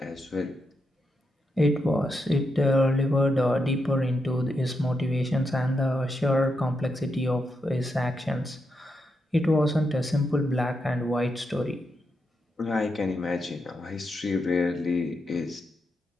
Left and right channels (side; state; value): both; normal; correlation 0.84